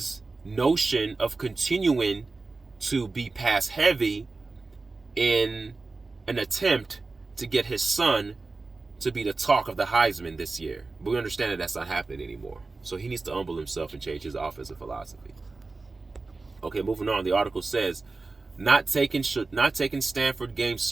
notion of continuing to be pass heavy in an attempt to get his son to be the talk of the Heisman this year. But we understand that that's not happening anymore. So he needs to humble himself and change his offensive philosophy. Okay, moving on. The article says, not taking Stanford game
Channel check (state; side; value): quieter; left; 3.7 dB